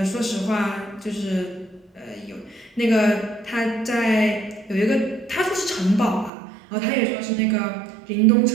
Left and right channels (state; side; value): drops out; left; at 6.3 s